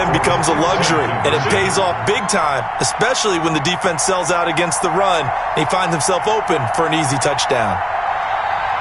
becomes a luxury, and it pays off big time, especially when the defense sells out against the run. He finds himself open for an easy touchdown.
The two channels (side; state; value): both; identical; correlation 1.00